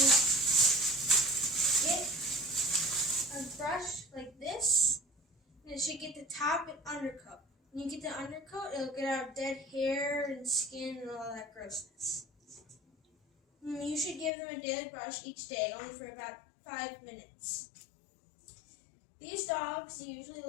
get a brush like this, and it should get the top and undercoat. When you get the undercoat, it'll get out dead hair and skin and all that grossness. You should give them a daily brush each day, only for about 5 minutes. These dogs usually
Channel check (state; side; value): drops out; right; at 14.3 s